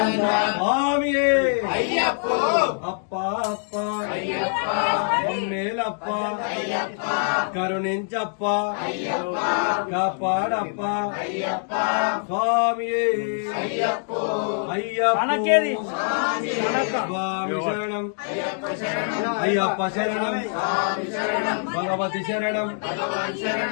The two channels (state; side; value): silent; right; digital silence